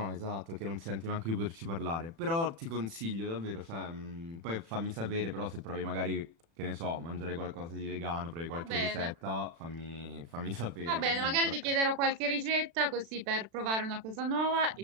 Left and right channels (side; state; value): left; late; 36 ms